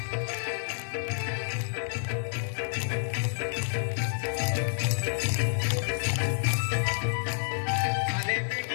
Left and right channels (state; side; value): silent; right; 58 dB below the other